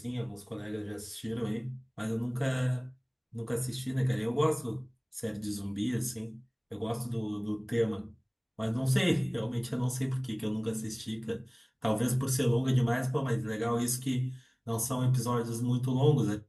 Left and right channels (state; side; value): identical; both; correlation 1.00